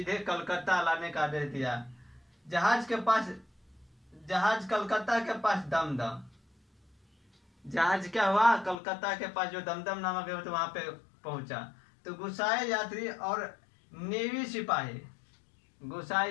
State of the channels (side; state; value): right; drops out; at 8.8 s